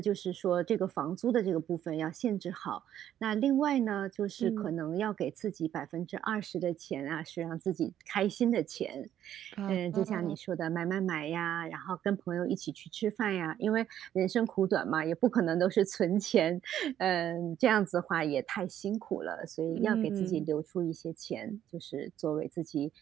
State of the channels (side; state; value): left; quieter; 11.0 dB